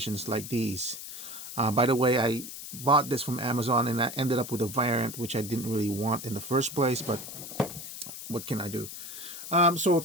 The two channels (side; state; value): left; noise; hiss, 10 dB below the sound